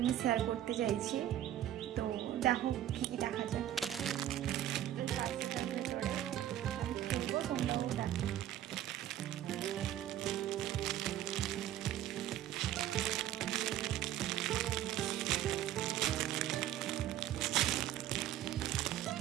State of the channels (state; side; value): quieter; left; 12.2 dB